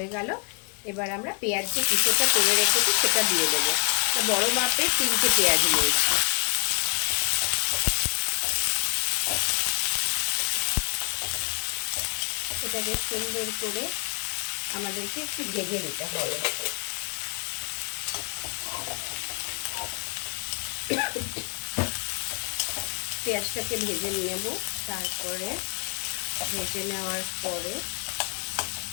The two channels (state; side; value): quieter; right; 39.3 dB